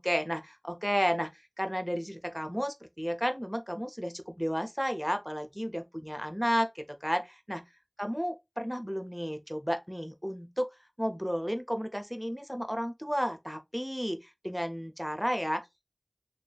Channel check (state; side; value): identical; both; correlation 1.00